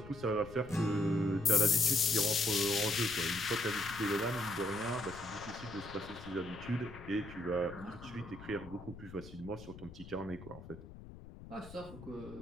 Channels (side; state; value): left; noise; rumble, 15 dB below the sound